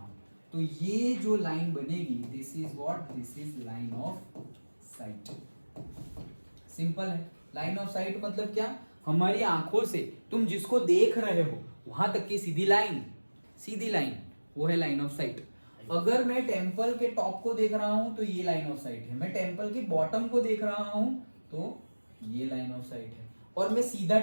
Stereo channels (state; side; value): inverted; both; correlation -1.00